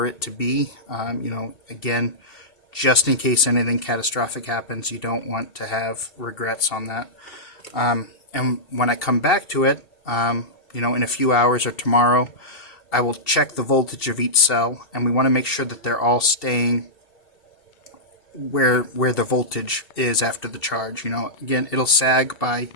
it to be. Again, just in case anything catastrophic happens, you don't want to have regrets on that. And when I come back to it, in a few hours or tomorrow, I will check the voltage of each cell, and we want to make sure that they're all staying where the voltage is after the charge. Again, it'll sag by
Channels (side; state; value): right; late; 2.7 ms